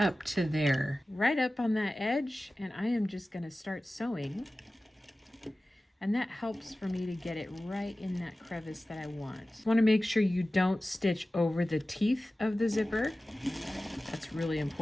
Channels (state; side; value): normal; both; correlation 0.96